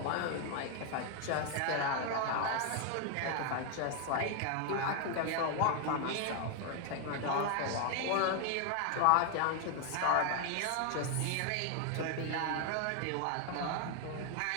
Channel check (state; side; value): different; both; correlation 0.00